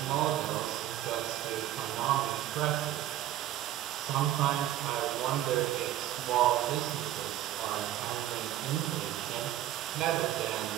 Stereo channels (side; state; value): left; quieter; 13.1 dB